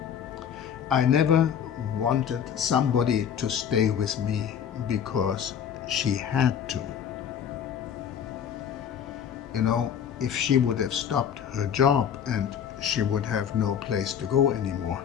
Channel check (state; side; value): quieter; right; 8.4 dB